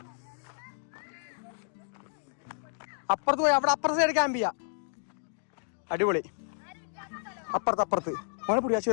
അപ്പുറത്ത് പോയി അവിടെ അപ്പുറത്തെ സൈഡ് ക്യാമ്പ് ചെയ്യാം. അടിപൊളി. അപ്പുറത്ത് മോനെ പിടിയാ,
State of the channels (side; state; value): right; silent; digital silence